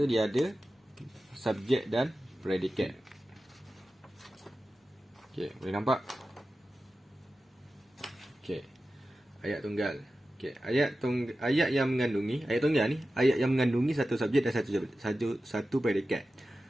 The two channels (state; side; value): normal; both; correlation 0.94